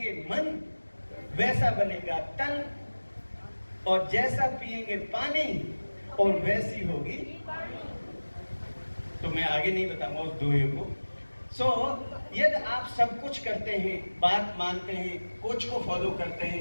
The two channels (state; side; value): inverted; both; correlation -1.00